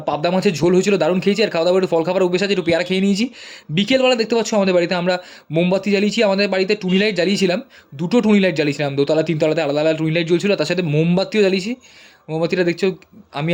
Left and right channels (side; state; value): both; identical; correlation 1.00